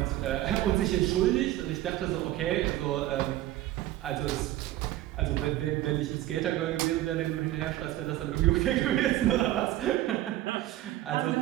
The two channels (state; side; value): quieter; left; 14.8 dB